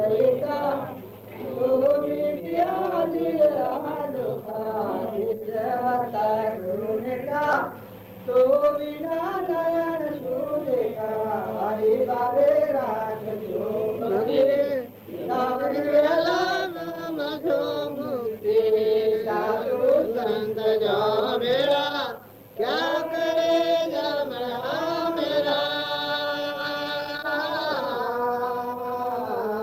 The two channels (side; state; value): both; identical; correlation 1.00